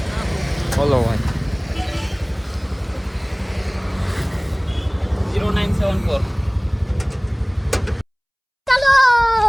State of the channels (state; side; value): identical; both; correlation 1.00